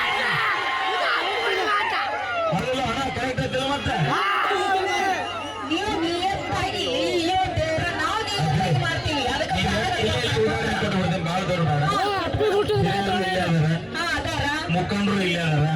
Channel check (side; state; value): both; identical; correlation 1.00